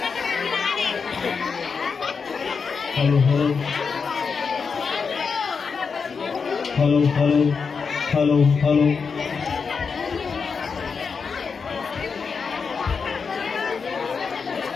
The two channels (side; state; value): right; quieter; 5.5 dB